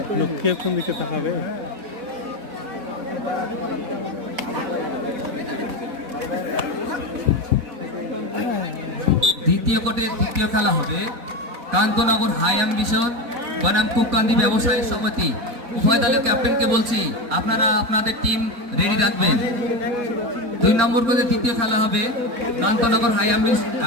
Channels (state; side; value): late; left; 4.1 ms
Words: লক্ষ্যে কোন দিকে তাকাবে? দ্বিতীয় কোর্টের দ্বিতীয় খেলা হবে কান্তনগর হাই অ্যাম্বিশন বনাম কুককান্দি ব্যবসায়ী সমিতি। উভয় দলের ক্যাপ্টেনকে বলছি আপনারা আপনাদের টিম রেডি রাখবেন। 2 নম্বর কোর্টের তৃতীয় খেলা হবে কান্তনগর হাই